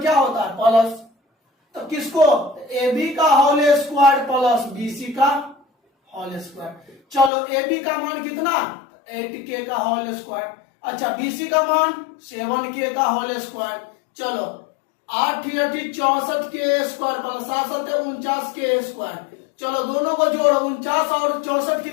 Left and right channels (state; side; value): drops out; right; at 7.3 s